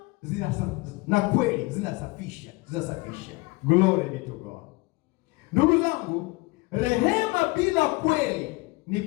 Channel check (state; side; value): quieter; right; 23.9 dB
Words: na kweli zinasafisha. Glory be to God. Ndugu zangu, rehema bila kweli ni